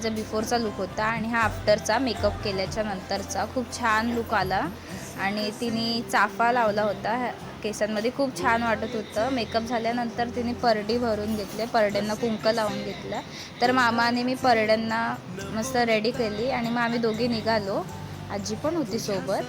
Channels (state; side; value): identical; both; correlation 1.00